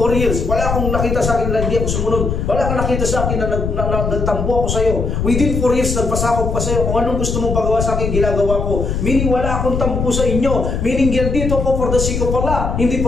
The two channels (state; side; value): noise; left; rumble, 2 dB below the sound